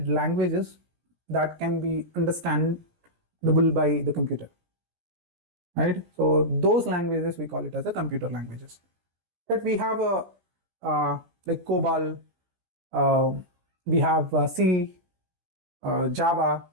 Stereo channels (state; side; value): late; left; 17 ms